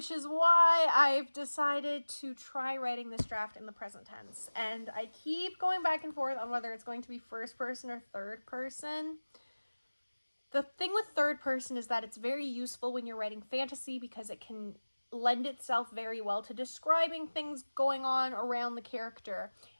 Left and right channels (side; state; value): both; inverted; correlation -1.00